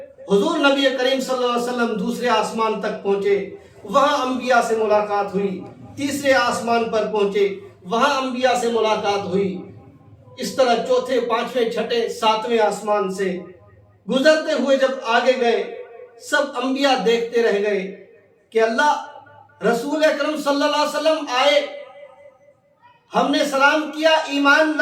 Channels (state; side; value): identical; both; correlation 1.00